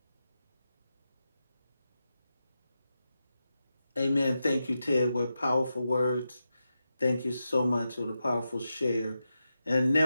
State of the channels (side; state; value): both; inverted; correlation -0.89